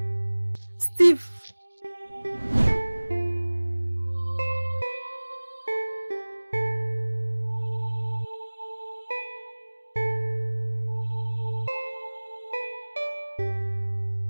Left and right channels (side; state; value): both; inverted; correlation -1.00